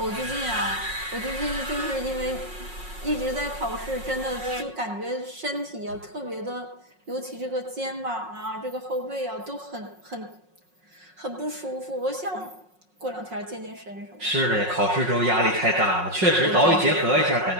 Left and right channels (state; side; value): late; left; 5.5 ms